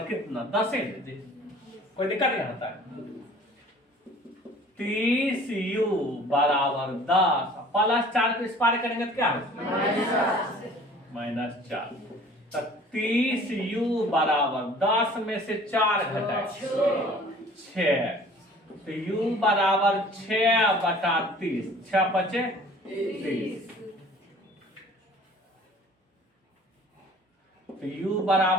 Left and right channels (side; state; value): both; normal; correlation 0.49